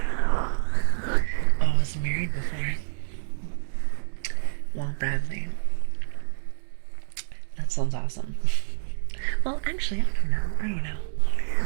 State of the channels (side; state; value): left; silent; digital silence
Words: Oh, I was married before. Well, Bradley. That sounds awesome. Well, actually, I don't know.